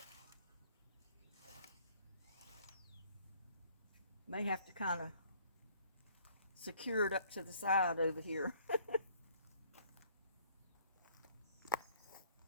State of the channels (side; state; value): both; inverted; correlation -0.59